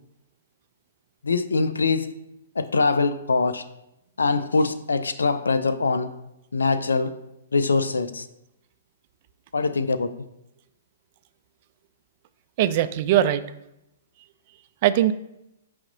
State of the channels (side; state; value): both; inverted; correlation -0.64